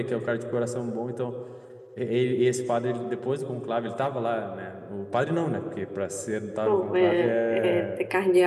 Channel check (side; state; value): both; identical; correlation 1.00